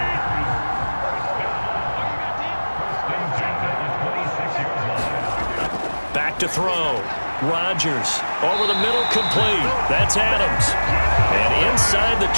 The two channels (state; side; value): inverted; both; correlation -1.00